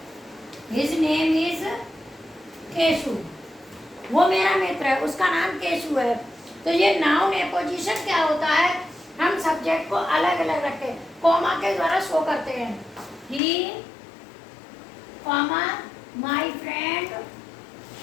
His name is Keshu, वो मेरा मित्र है, उसका नाम केशु है। तो ये नाउन एपोजिशन क्या होता है, हम सब्जेक्ट को अलग अलग रखते, कॉमा के द्वारा शो करते हैं। He comma my friend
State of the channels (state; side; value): drops out; right; at 13.4 s